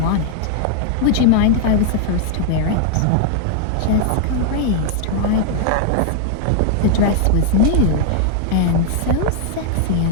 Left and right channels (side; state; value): both; different; correlation -0.01